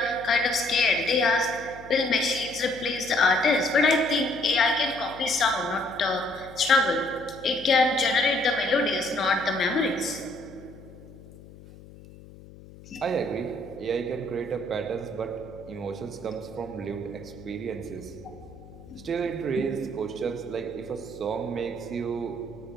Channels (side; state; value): left; noise; hum, 19 dB below the sound